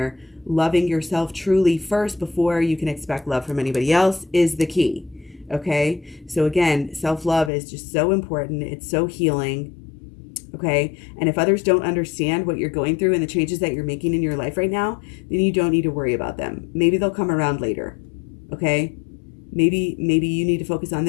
loving yourself truly first before you can expect love from anybody else is the key. Okay, so again, self-love is just so important. It's so healing. Okay, and if others don't understand what you're going through and the changes that you're making in your life right now, then you don't need to worry about them. Maybe they'll come around later. Okay, maybe you need to focus on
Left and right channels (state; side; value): drops out; right; at 7.5 s